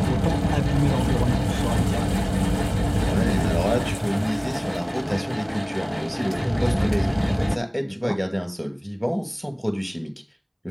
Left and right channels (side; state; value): both; identical; correlation 1.00